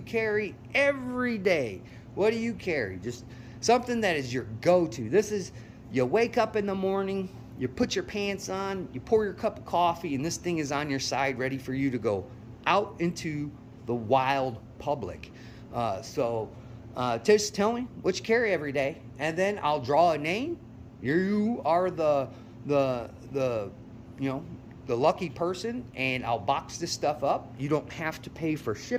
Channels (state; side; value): identical; both; correlation 1.00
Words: carry every day? What do you carry? Just something that is your go-to. This is, you wake up in the morning, you put your pants on, you pour your cup of coffee, and this thing is on your side ready for you to go out into the wild public. Just tell me what you carry every day, and then I'll draw a name. You are the lucky person, and I'll box this stuff up. You don't have to pay for